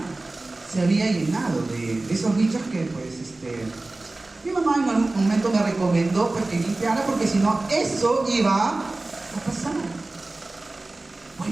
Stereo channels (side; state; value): left; quieter; 3.0 dB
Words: se había llenado de esos bichos que, pues, mi mamá en algún momento me recomendó pues, que limpiara, porque si no, eso iba a pasar.